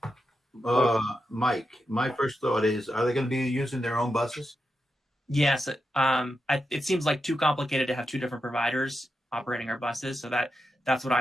Mike, my first thought is, are they going to be using their own buses? Yes. It seems like too complicated to have two different providers operating our buses. So that's what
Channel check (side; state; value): both; normal; correlation 0.87